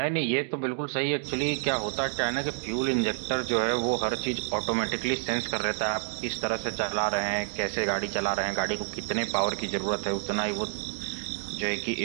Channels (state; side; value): silent; left; digital silence